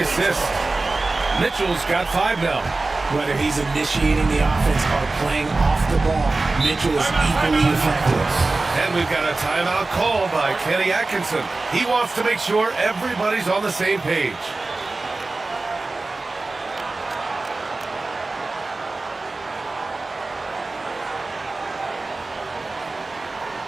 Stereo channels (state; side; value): quieter; left; 3.4 dB